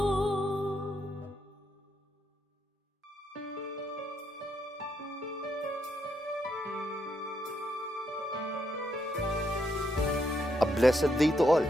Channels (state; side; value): normal; both; correlation 0.77